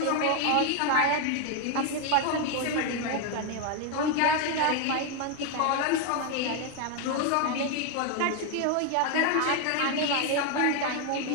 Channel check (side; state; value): both; different; correlation 0.01